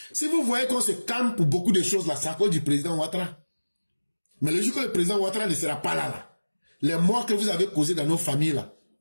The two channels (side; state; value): both; inverted; correlation -1.00